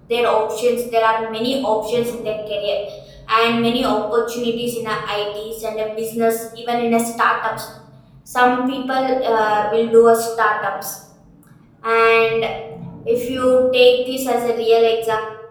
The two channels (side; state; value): both; identical; correlation 1.00